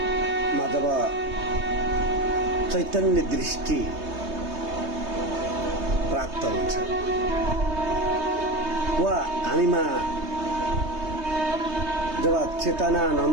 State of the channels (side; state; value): left; late; 3.2 ms